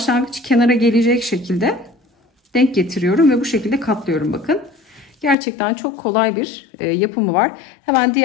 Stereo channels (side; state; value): right; drops out; at 5.4 s